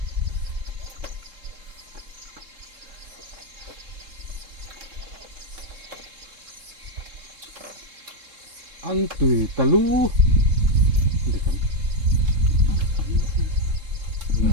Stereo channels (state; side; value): late; left; 3.7 ms